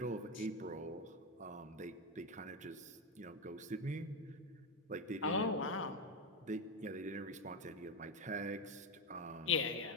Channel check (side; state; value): both; normal; correlation 0.10